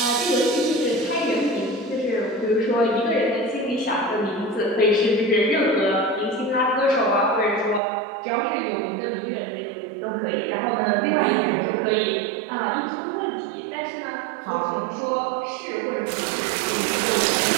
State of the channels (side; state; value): left; drops out; at 7.8 s